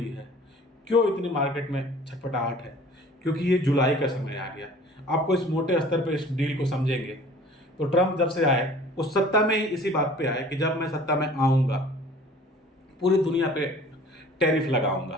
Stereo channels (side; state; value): both; normal; correlation 0.48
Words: है, क्यों इतनी मार्केट में छटपटाहट है? क्योंकि ये जुलाई का समय आ गया। आपको इस मोटे स्तर पे इस डील को समझेंगे तो ट्रंप जब से आए उस सत्ता में ही इसी बात पे आए कि जब मैं सत्ता में आऊँगा पूरी दुनिया पे टैरिफ